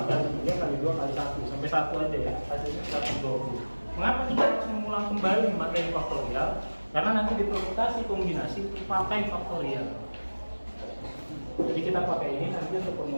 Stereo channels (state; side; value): inverted; both; correlation -1.00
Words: kali 3 kali 2 kali 1 sampai 1 aja ya, hasilnya 120. Mengapa kita harus mengulang kembali materi faktorial? Karena nanti di permutasi kombinasi pakai faktorial. Jadi kita pakai ini nanti untuk